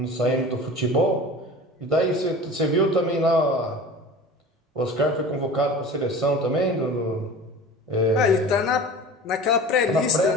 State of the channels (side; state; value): both; normal; correlation 0.37